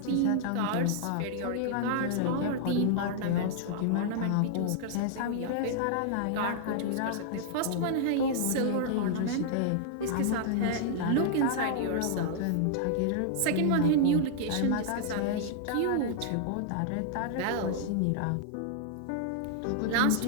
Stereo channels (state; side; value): different; both; correlation -0.01